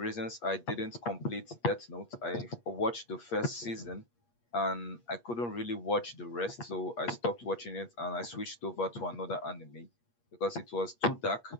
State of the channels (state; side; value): late; right; 8.4 ms